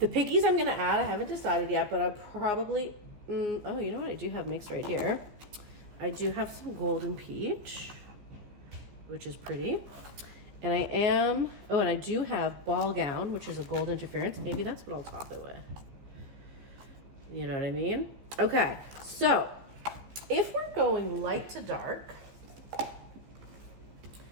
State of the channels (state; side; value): late; left; 15 ms